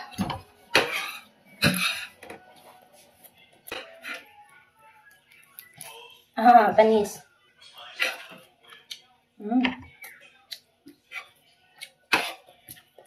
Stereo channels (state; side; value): identical; both; correlation 1.00